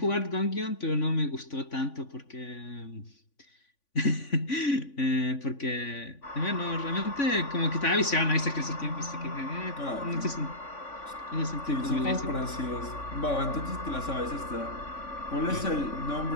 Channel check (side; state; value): right; late; 3.5 ms